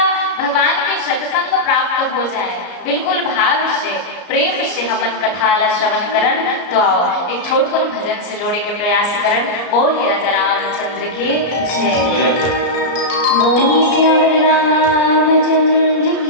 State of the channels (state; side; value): late; right; 34 ms